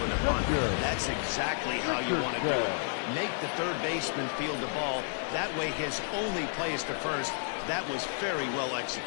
with a bunt, that's exactly how you want to do it. Make the third baseman field the ball. That way his only play is to first. That was very well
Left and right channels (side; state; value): right; silent; digital silence